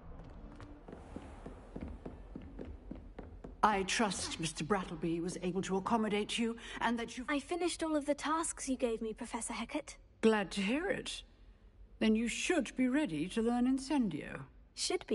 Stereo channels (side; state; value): both; identical; correlation 1.00